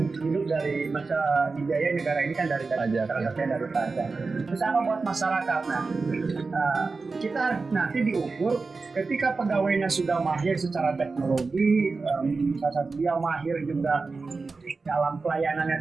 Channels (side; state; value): left; quieter; 4.1 dB